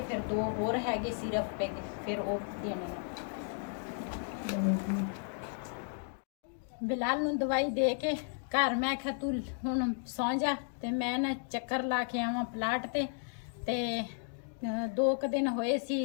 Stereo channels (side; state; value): right; silent; 55 dB below the other